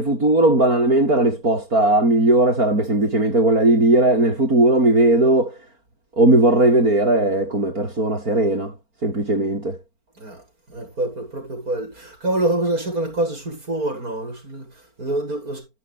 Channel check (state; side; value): late; left; 4.4 ms